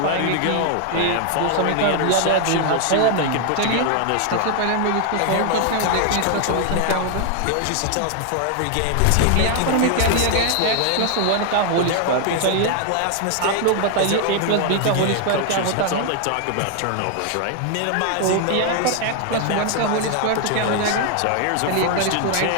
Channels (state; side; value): different; both; correlation 0.00